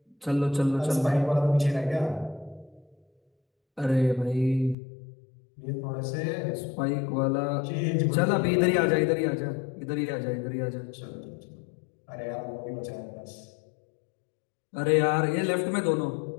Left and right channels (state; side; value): drops out; right; at 4.8 s